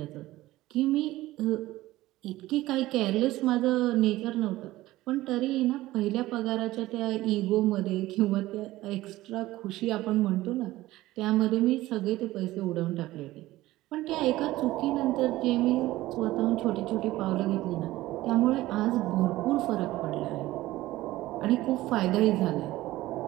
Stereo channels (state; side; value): quieter; left; 16.9 dB